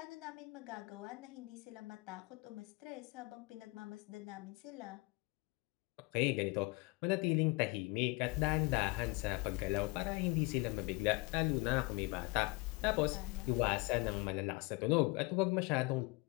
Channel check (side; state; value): right; quieter; 25.3 dB